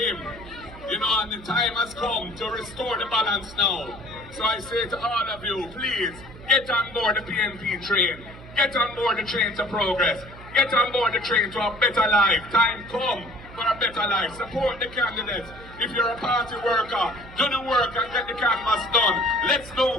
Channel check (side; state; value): right; noise; hum, 17 dB below the sound